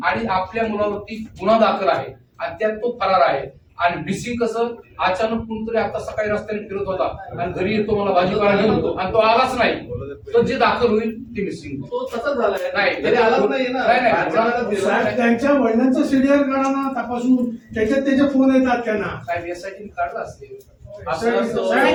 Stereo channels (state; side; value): identical; both; correlation 1.00